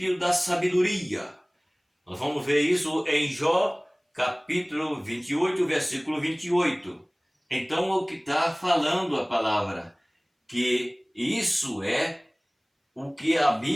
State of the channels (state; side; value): identical; both; correlation 1.00